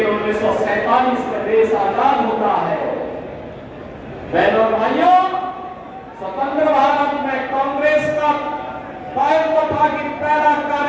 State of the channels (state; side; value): identical; both; correlation 1.00